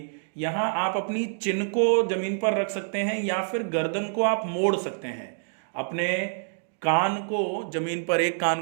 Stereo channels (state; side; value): silent; left; digital silence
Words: यहां आप अपनी चिन को जमीन पर रख सकते हैं या फिर गर्दन को आप मोड़ सकते हैं। अपने कान को जमीन पर, एक कान